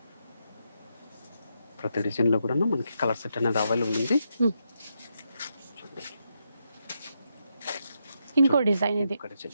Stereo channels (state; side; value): inverted; both; correlation -0.82